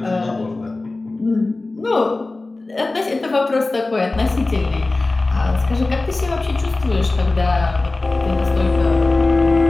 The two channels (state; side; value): quieter; right; 3.2 dB